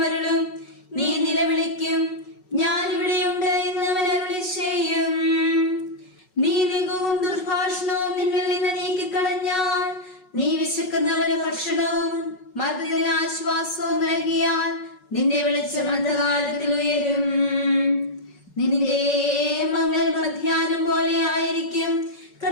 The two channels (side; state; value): right; late; 5.4 ms